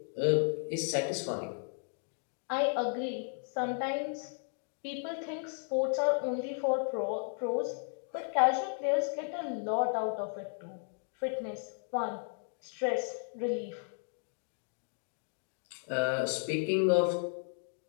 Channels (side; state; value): right; silent; 55 dB below the other